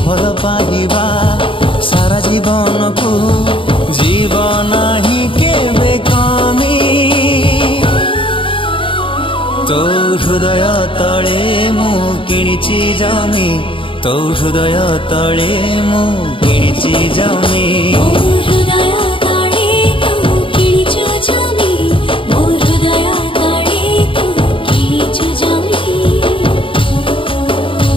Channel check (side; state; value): right; late; 0.25 ms